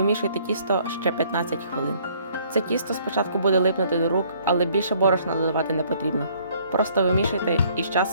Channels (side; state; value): both; inverted; correlation -0.62